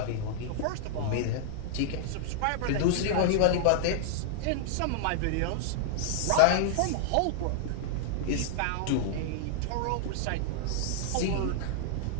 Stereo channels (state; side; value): different; both; correlation -0.01